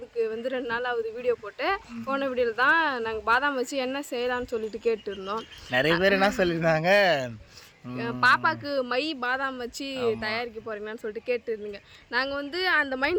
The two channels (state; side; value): identical; both; correlation 1.00